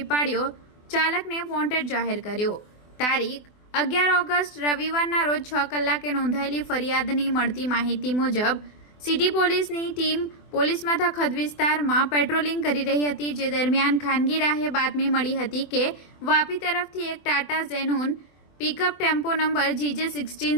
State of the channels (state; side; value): late; right; 24 ms